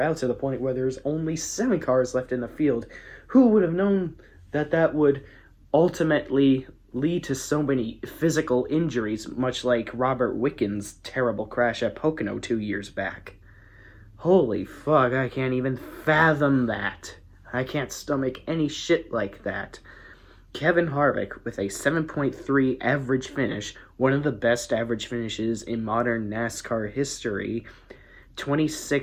out to the point where there's only 7 cars left in the field. Who would have known that would ultimately lead to so many physical injuries, much like Robert Wickens' terrible crash at Pocono 2 years back? Holy fuck, I can't even fathom that. I can't stomach any shit like that. Kevin Harvick with a 7.3 average finish, one of the best average finishes in modern NASCAR history,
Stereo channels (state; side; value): identical; both; correlation 1.00